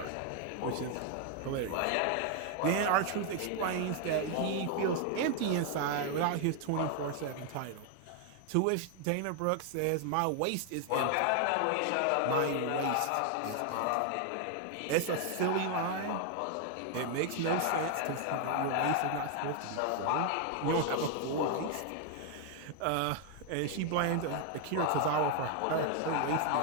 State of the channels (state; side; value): different; both; correlation 0.00